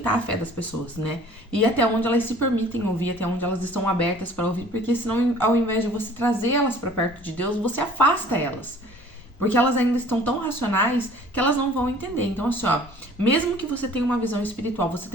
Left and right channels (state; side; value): normal; both; correlation 0.51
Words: a fé das pessoas, né? E até onde elas se permitem ouvir, até onde elas estão abertas para ouvir, porque senão, ao invés de você trazer elas para perto de Deus, você afasta elas. Porque elas ainda estão tão racionais que elas não vão entender. Então, assim, ó, mesmo que você tenha uma visão espiritual, você